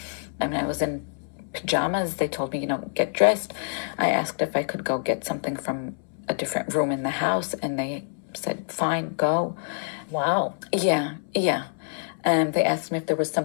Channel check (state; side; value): silent; right; 61 dB below the other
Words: I mean, I was in pajamas. They told me, get dressed. I asked if I could go get something from a different room in the house, and they said, "Fine, go." Wow. Yeah. They asked me if there was